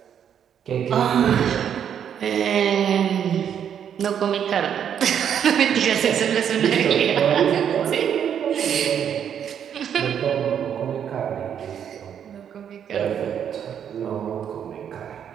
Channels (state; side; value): quieter; left; 8.7 dB